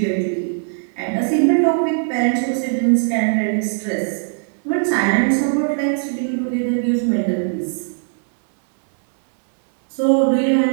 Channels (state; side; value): silent; left; digital silence